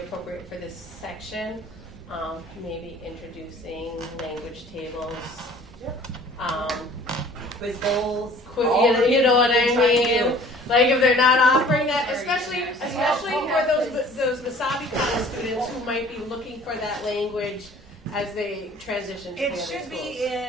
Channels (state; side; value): normal; both; correlation 0.50